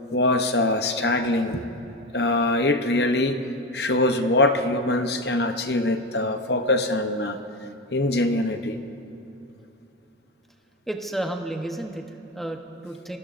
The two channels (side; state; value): both; normal; correlation 0.18